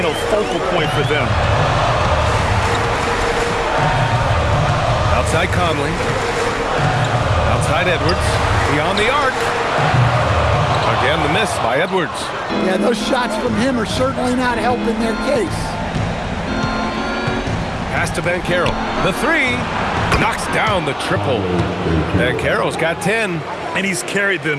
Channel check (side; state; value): both; identical; correlation 1.00